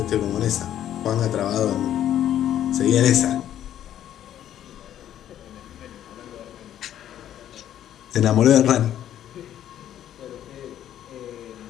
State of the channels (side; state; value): right; quieter; 11.2 dB